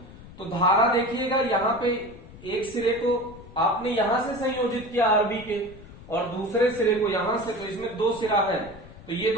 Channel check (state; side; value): noise; left; rumble, 18 dB below the sound